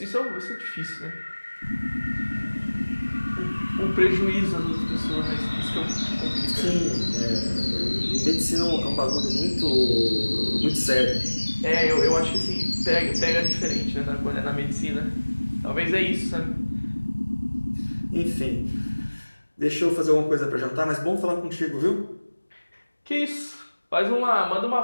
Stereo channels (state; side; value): inverted; both; correlation -1.00